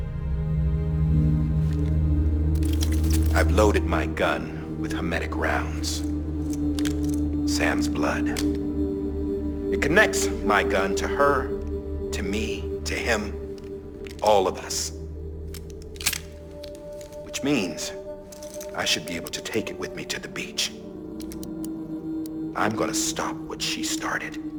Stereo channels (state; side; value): identical; both; correlation 1.00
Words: I've loaded my gun with hermetic rounds. Sam's blood. It connects my gun to her, to me, to him, all of us. Which means I should be able to take it with me to the beach. I'm gonna stop what she started